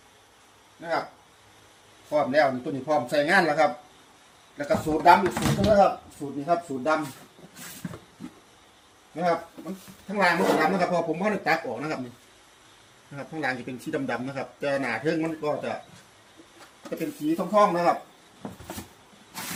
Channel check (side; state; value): both; identical; correlation 1.00